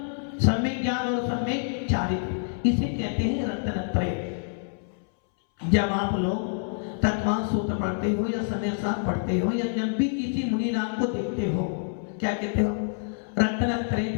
सम्यक ज्ञान और सम्यक चारित्र। इसे कहते हैं रत्नत्रय। जब आप लोग तत्वान सूत्र पढ़ते हो, या समय साथ पढ़ते हो, या जब भी किसी मुनिनाथ को देखते हो, क्या कहते हो?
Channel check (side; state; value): right; silent; 60 dB below the other